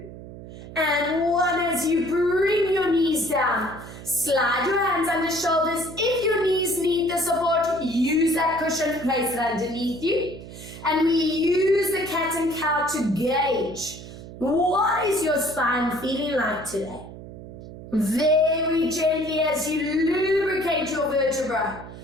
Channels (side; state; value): right; noise; hum, 14 dB below the sound